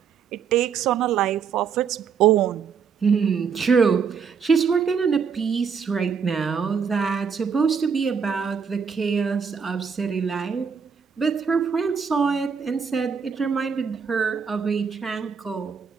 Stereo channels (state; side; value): quieter; left; 6.4 dB